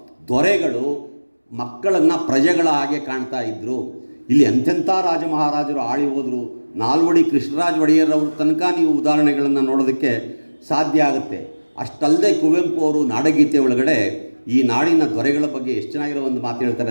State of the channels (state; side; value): inverted; both; correlation -1.00